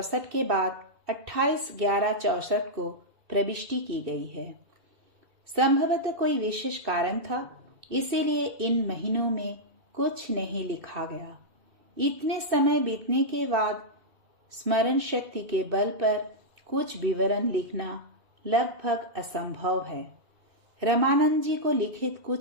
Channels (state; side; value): late; left; 2.6 ms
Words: के बाद 28/11/64 को प्रविष्टि की गई है। संभवतः कोई विशेष कारण था, इसीलिए इन महीनों में कुछ नहीं लिखा गया। इतने समय बीतने के बाद स्मरण शक्ति के बल पर कुछ विवरण लिखना लगभग असंभव है। रामानंद जी को लिखित